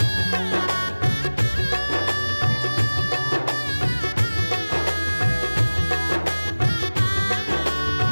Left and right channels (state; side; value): inverted; both; correlation -1.00